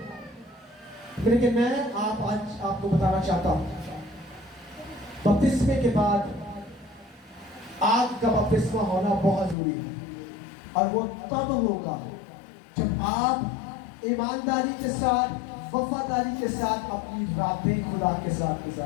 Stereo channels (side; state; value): right; drops out; at 9.6 s